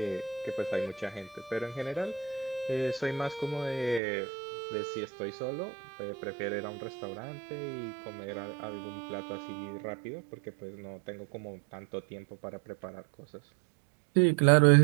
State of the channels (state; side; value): drops out; left; at 4.0 s